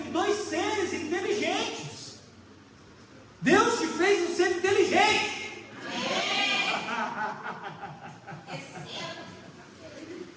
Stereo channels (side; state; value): both; identical; correlation 1.00